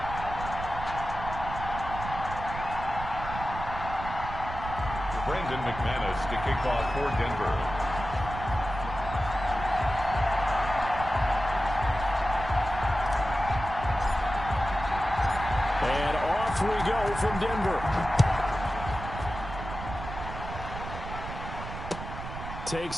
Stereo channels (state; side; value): noise; right; rumble, 8 dB below the sound